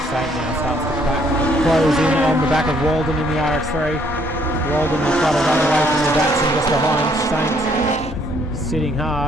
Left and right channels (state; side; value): normal; both; correlation 0.66